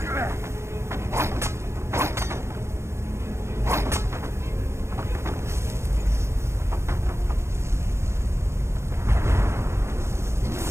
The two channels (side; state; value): left; late; 0.13 ms